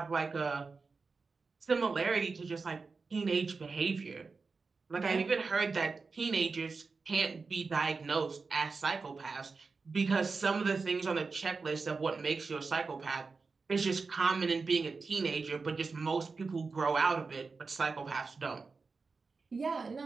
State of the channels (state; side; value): quieter; left; 4.4 dB